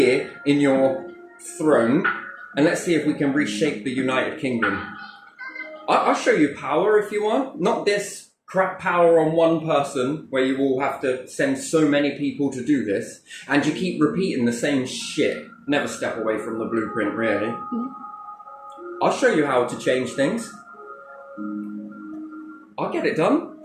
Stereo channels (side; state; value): both; identical; correlation 1.00